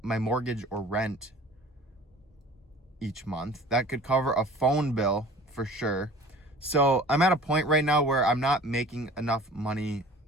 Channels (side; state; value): both; normal; correlation 0.45